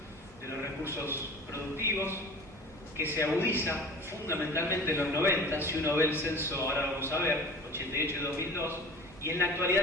de los recursos productivos, que se agudiza fundamentalmente en los 90, si uno ve el censo, ahora vamos a ver, 88 y 2002, y en la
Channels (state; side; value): normal; both; correlation 0.40